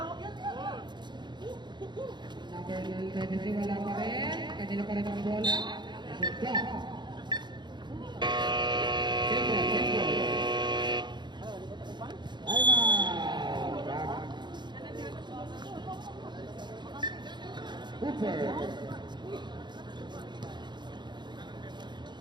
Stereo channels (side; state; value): left; late; 0.22 ms